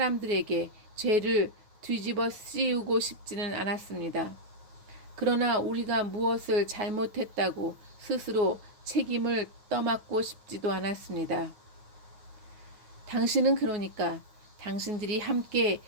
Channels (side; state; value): left; late; 9.4 ms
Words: 죄를 뒤집어 씌우고 싶지는 않았습니다. 그러나 우리가 무엇을 잘못했다고 스스로 책임을 떠맡고 싶지도 않았습니다. 당신은 그러니까 당신들이 함께